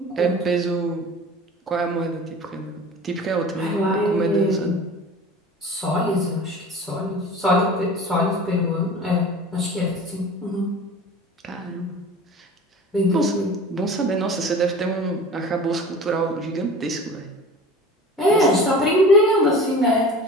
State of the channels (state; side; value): normal; both; correlation 0.39